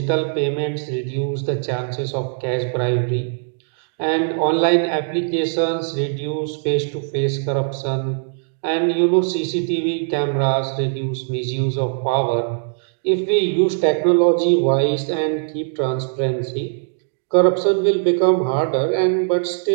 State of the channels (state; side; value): silent; left; digital silence